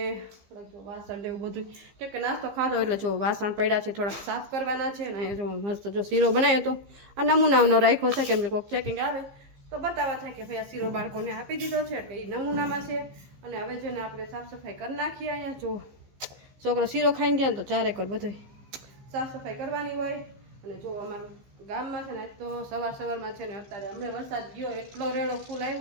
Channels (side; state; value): left; late; 15 ms